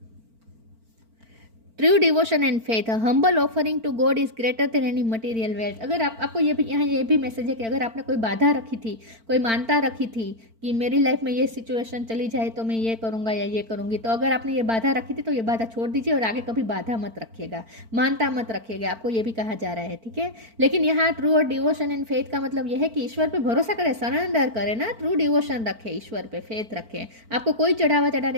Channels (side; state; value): left; late; 4.4 ms